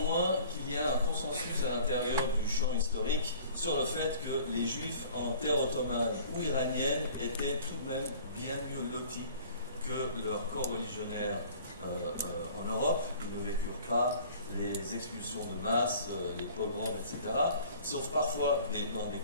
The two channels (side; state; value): both; inverted; correlation -0.49